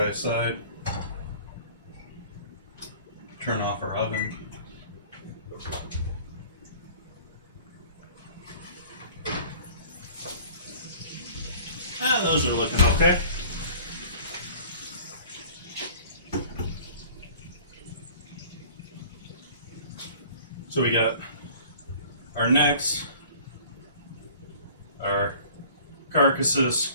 aside. Turn off our oven. Those are looking okay. So we got our necks, our carcasses,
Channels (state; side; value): inverted; both; correlation -0.47